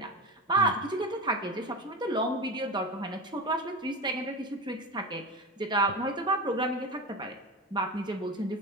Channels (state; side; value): normal; both; correlation 0.25